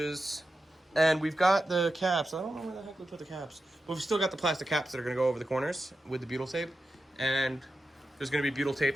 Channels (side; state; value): both; normal; correlation 0.90